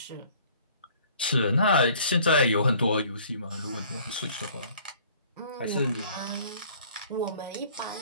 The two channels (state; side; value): inverted; both; correlation -0.54